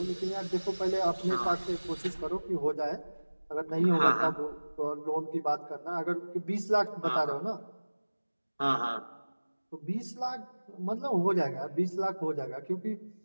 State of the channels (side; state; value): both; inverted; correlation -1.00